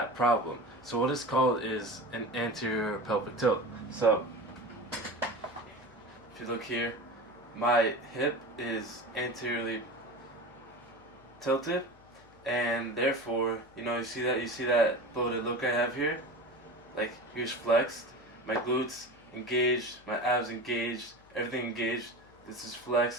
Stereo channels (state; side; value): noise; left; hum, 27 dB below the sound